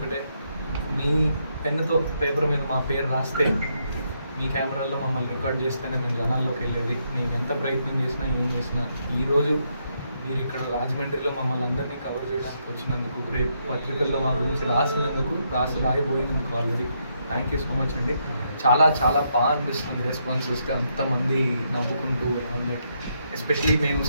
మీ పెన్నుతో పేపర్ మీద మా పేరు రాస్తే, మీ కెమెరాల్లో మమ్మల్ని రికార్డ్ చేస్తేనే మేము జనాల్లోకి వెళ్ళేది. మేము ఎంత ప్రయత్నం చేసినా ఏం చేసినా ఈరోజు మీరు ఇక్కడ రాజమండ్రిలో మమ్మల్ని అందరినీ కవర్ చేయడానికి వచ్చినందుకు, రేపు పత్రికల్లో మా గురించి రాసినందుకు, రాయబోయినందుకు already thank you so much అండి. చాలా చాలా బాగా అనిపిస్తుంది రెస్పాన్స్ వస్తే, అంతమంది నవ్వుకుంటూ అందరికి. ఎస్పెషలీ మేము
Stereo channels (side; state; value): both; inverted; correlation -0.77